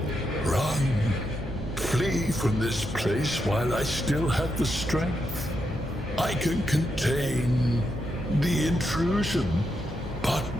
Run. Flee from this place while I still have the strength. I can contain the intrusion, but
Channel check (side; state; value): both; normal; correlation 0.83